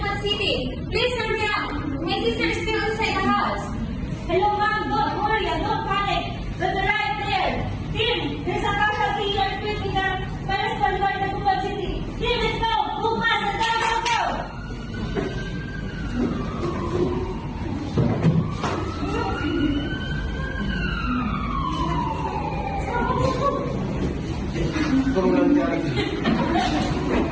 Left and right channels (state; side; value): identical; both; correlation 1.00